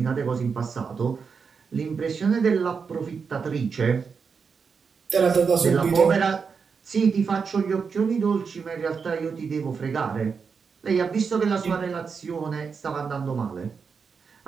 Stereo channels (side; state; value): left; quieter; 5.7 dB